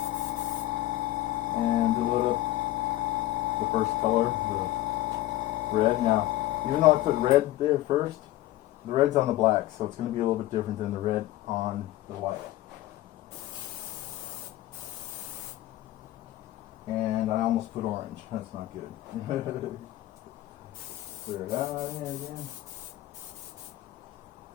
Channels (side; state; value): right; quieter; 15.6 dB